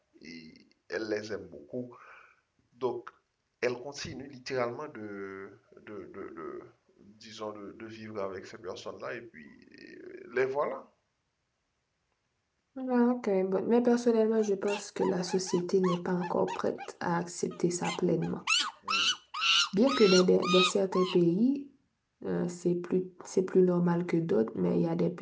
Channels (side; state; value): both; identical; correlation 1.00